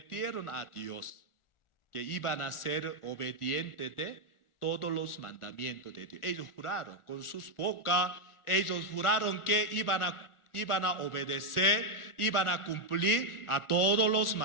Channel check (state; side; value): late; right; 1.4 ms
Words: a Dios que iban a ser obedientes de todos los mandamientos de Dios. Ellos juraron con sus bocas, ellos juraron que iban a obedecer, iban a cumplir a todos los